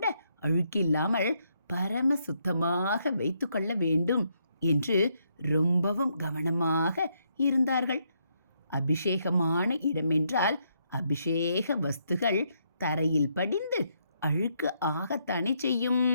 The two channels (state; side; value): inverted; both; correlation -0.76